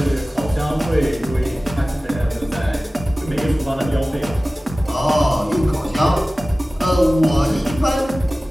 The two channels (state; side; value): normal; both; correlation 0.97